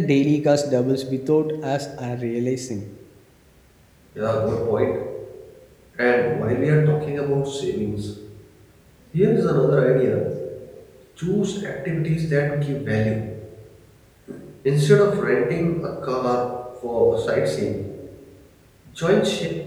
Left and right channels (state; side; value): identical; both; correlation 1.00